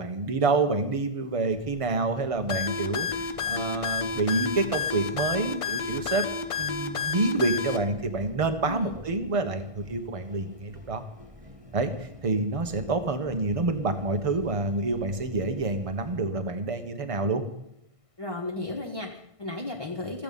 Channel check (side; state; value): left; late; 1.5 ms